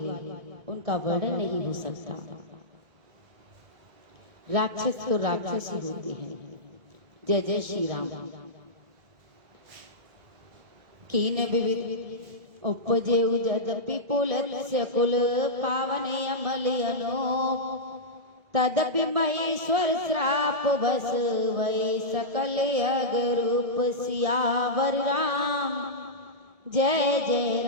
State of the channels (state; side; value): late; left; 1.9 ms